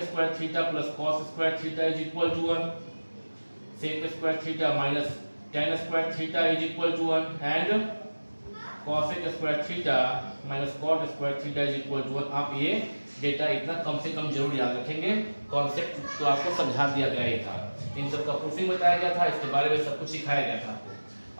square theta plus cos square theta is equal to 1, sec square theta minus tan square theta is equal to 1, and cosec square theta minus cot square theta is equal to 1। आप ये data इतना कम से कम जरूर याद रखेंगे। Concept तो आपको समझा दिया गया ही था, इन सब का प्रूफिंग बताया गया था, इसके बारे में सब कुछ सिखाया गया था आपको।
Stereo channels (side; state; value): both; inverted; correlation -1.00